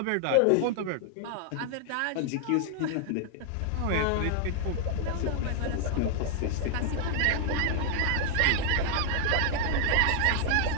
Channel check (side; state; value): both; different; correlation 0.00